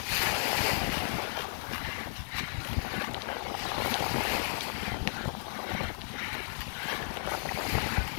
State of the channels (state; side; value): silent; right; digital silence